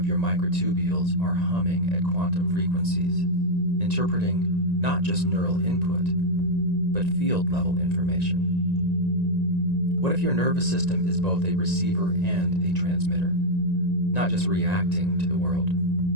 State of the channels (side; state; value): left; late; 1.9 ms